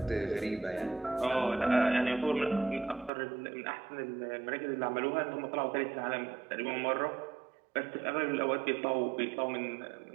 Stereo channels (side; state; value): left; drops out; at 3.1 s